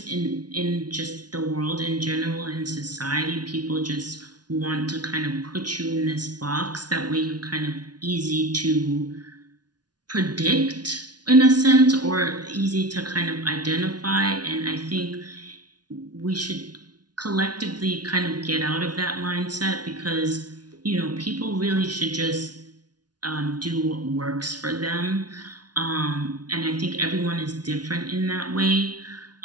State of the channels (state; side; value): late; left; 0.69 ms